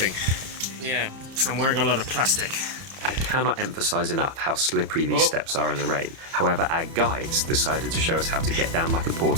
Yeah. So I'm wearing a lot of plastic. I cannot emphasize enough how slippery these steps are in the rain. However, our guides decided to show us how to get down like a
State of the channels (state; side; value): late; left; 30 ms